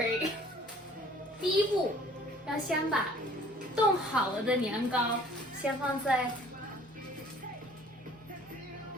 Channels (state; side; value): normal; both; correlation 0.53